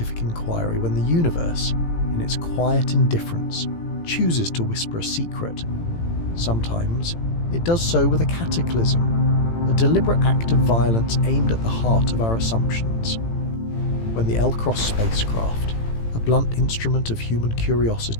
inquiry when the universe, in its quiet indifference, chooses to whisper a secret. Sometimes it does so with a cataclysm, a deliberate act of violence aimed at the heart of our assumptions. When the L-Cross spacecraft, a blunt instrument of human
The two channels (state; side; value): late; right; 18 ms